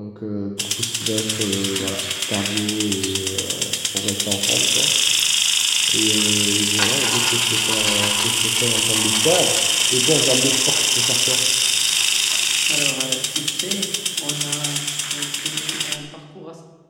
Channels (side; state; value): both; identical; correlation 1.00